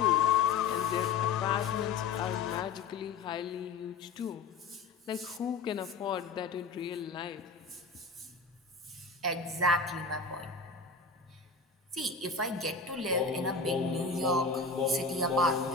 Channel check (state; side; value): quieter; right; 4.6 dB